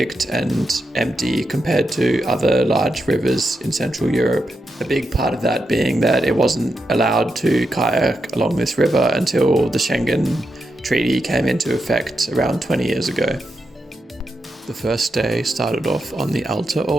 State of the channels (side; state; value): both; normal; correlation 0.85